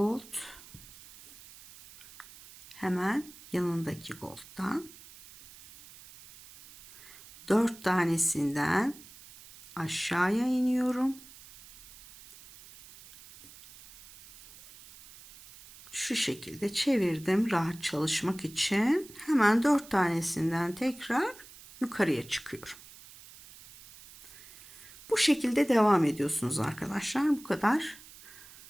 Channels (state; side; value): noise; right; hiss, 20 dB below the sound